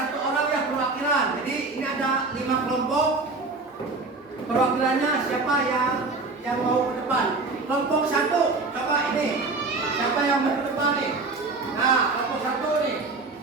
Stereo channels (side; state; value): left; quieter; 3.6 dB